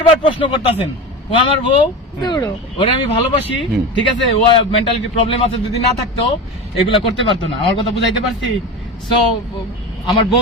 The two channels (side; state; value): both; normal; correlation 0.26